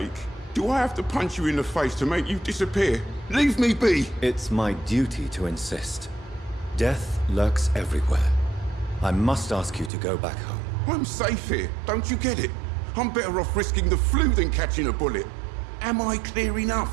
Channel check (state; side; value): drops out; left; at 9.9 s